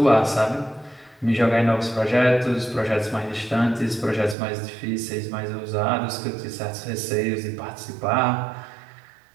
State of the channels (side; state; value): left; drops out; at 4.4 s